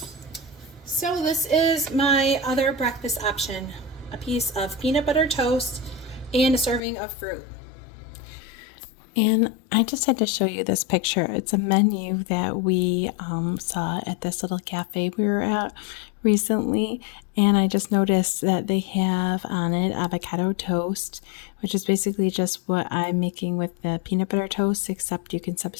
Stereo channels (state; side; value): drops out; right; at 6.8 s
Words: So this is my other breakfast option, a piece of peanut butter toast and a serving of fruit. And I just had to show you this picture. It's a menu that we saw at this little cafe we were at recently. And I just noticed that they have on it avocado toast, which is basically just what I'm making with the peanut butter toast, except you can